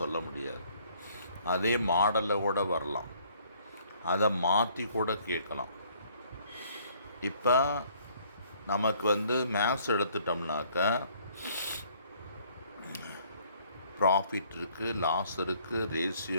சொல்ல முடியாது. அதே மாடலில் கூட வரலாம், அதை மாற்றி கூட கேட்கலாம். இப்போ நமக்கு வந்து மேக்ஸ் எடுத்துட்டோம்னாக்க ப்ராஃபிட் இருக்குது, லாஸ் இருக்குது,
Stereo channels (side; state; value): both; inverted; correlation -0.61